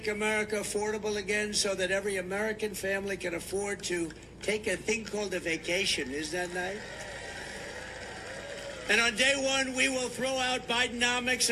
America affordable again so that every American family can afford to take a thing called a vacation. Isn't that nice? And on day one, we will throw out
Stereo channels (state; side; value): identical; both; correlation 1.00